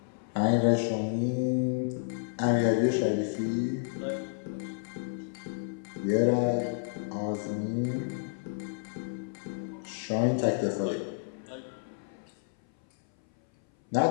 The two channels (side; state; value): right; silent; 57 dB below the other